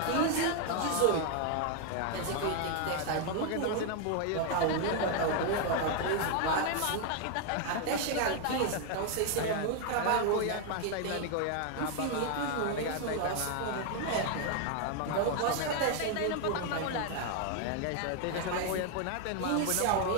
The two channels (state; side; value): different; both; correlation 0.00